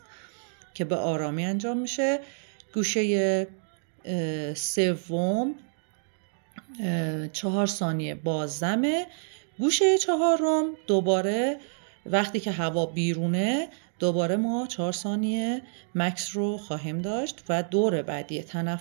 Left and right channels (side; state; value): left; silent; digital silence